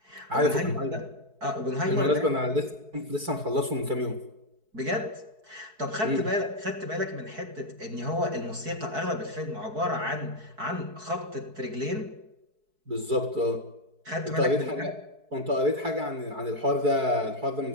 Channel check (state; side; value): late; left; 4.6 ms